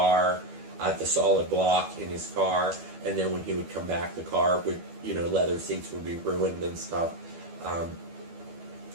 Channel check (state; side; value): late; left; 12 ms